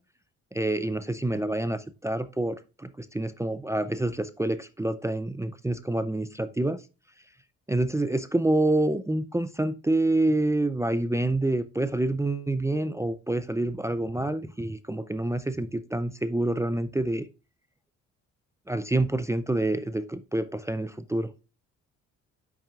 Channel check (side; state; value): both; normal; correlation 0.89